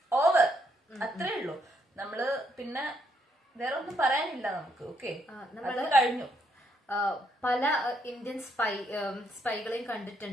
ഓവർ, അത്രേ ഉള്ളൂ. നമ്മള് പിന്നെ വേറെ ഒന്നും പറയാനില്ല നമുക്ക്. ഓക്കെ, നമ്മൾ കഴിഞ്ഞു. പല ഇന്ത്യൻ സ്പൈകളെയും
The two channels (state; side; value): normal; both; correlation 0.74